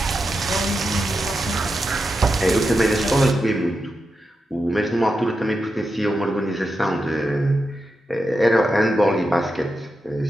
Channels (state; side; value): normal; both; correlation 0.88